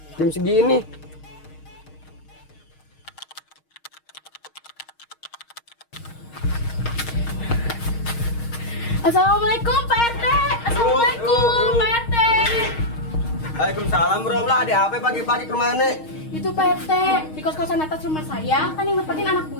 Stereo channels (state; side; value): late; right; 6.4 ms